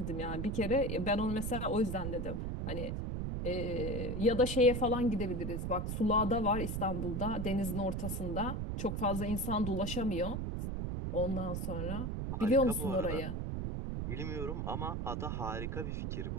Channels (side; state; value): right; noise; rumble, 2 dB below the sound